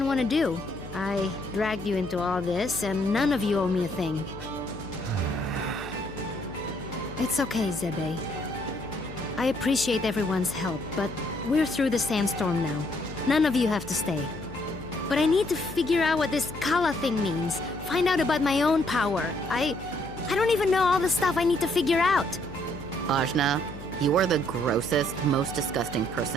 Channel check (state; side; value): noise; left; hum, 14 dB below the sound